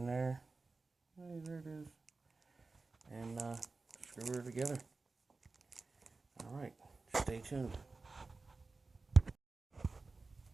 there. Hey, there it is. And screw her together. Alright, stay tuned.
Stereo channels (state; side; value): quieter; left; 3.8 dB